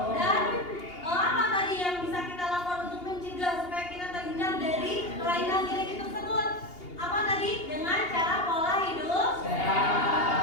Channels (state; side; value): late; right; 2.8 ms